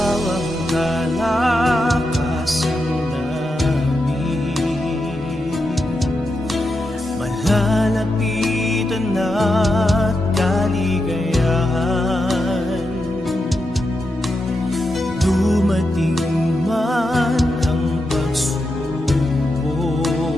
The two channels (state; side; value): normal; both; correlation 0.86